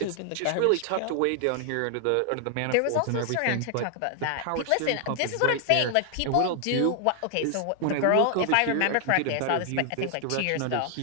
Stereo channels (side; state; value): both; different; correlation 0.00